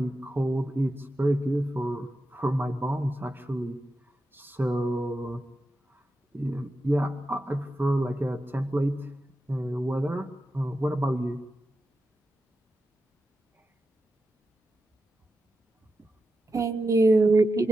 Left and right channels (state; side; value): normal; both; correlation 0.90